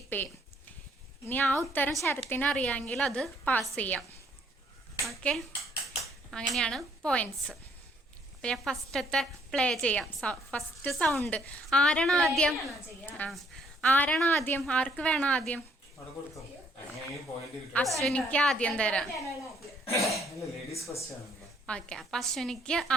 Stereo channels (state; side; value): normal; both; correlation 0.66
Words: ചെയ്യും. ഇനി ആ ഉത്തരം ശരത്തിന് അറിയാമെങ്കിൽ അത് പാസ് ചെയ്യാം. ഓക്കെ, അങ്ങനെയാണ് പോയിന്റ്സ്. അപ്പം ഞാൻ ഫസ്റ്റത്തെ പ്ലേ ചെയ്യാം. ഫസ്റ്റ് സൗണ്ട് ആരാണ് ആദ്യം? ആർക്ക് വേണം ആദ്യം? അശ്വിനിക്ക് ആദ്യം തരാം. ഓക്കെ, അപ്പൊ അശ്വിനിക്ക്